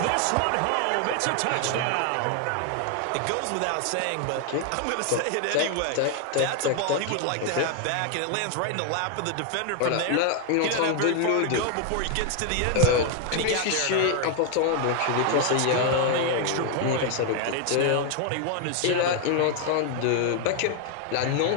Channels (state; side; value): different; both; correlation 0.00